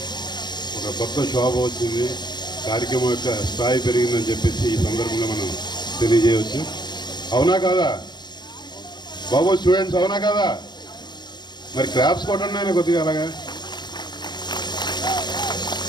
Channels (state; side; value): late; right; 0.21 ms